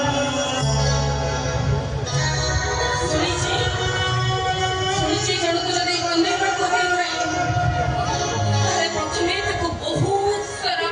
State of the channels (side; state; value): both; identical; correlation 1.00